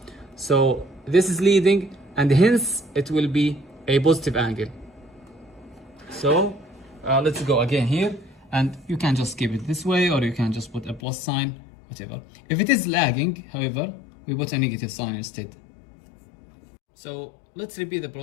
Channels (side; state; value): right; drops out; at 11.0 s